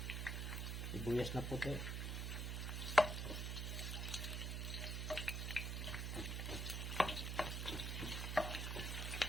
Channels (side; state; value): right; noise; hum, 1 dB below the sound